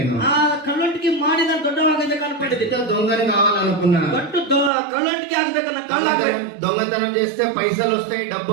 ఆ కಳ್ಳొంటికి ಮಾಡಿ ನಾನು ದೊಡ್ಡವಾಗಬೇಕು ಅನ್ಕೊಂಡಿದ್ದೀನಿ. దొంగని కావాలనుకున్నా. కಳ್ಳొంటికి ಆಗ್ಬೇಕು. దొంగతనం చేస్తే పైసలు వస్తాయి, డబ్బు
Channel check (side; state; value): left; drops out; at 4.7 s